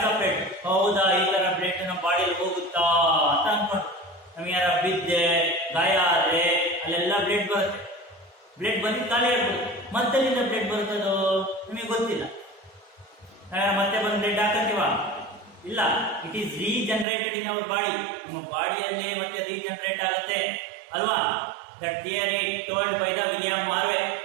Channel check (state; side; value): drops out; left; at 17.1 s